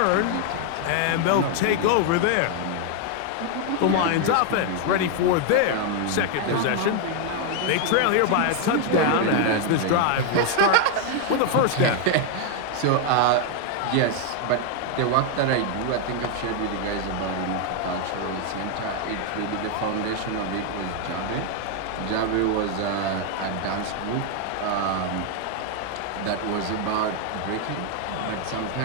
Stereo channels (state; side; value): different; both; correlation 0.01